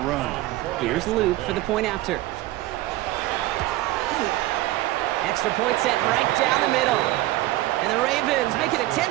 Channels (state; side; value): quieter; left; 16.8 dB